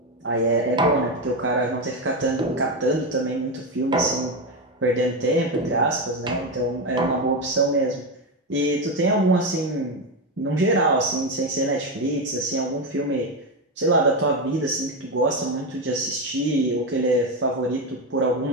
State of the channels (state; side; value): normal; both; correlation 0.12